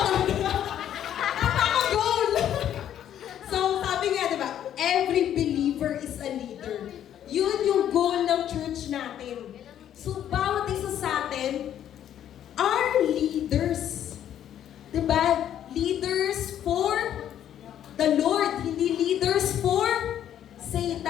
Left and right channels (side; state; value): right; quieter; 10.5 dB